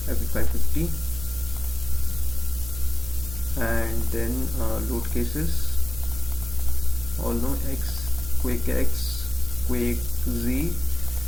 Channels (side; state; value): right; noise; hum, 12 dB below the sound